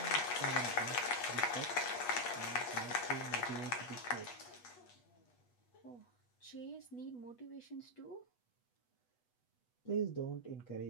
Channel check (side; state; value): right; late; 8.2 ms